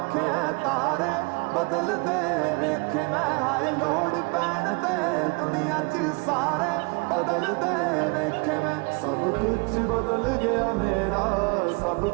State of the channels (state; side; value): quieter; left; 30.1 dB